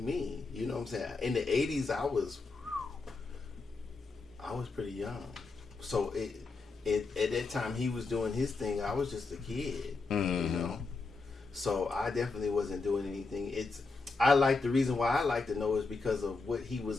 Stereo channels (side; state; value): right; quieter; 3.9 dB